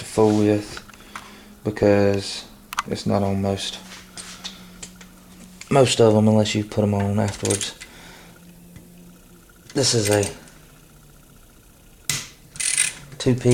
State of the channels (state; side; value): identical; both; correlation 1.00